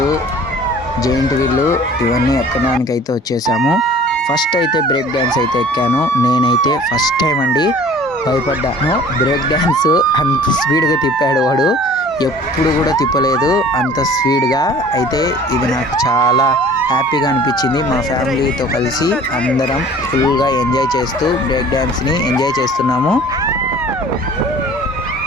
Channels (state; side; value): normal; both; correlation 0.48